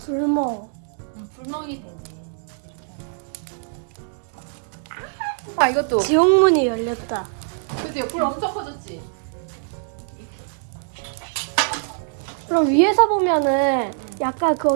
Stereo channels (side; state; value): left; silent; digital silence